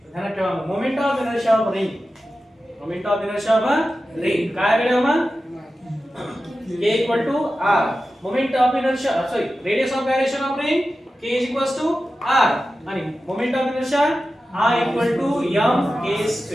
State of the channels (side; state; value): both; normal; correlation 0.93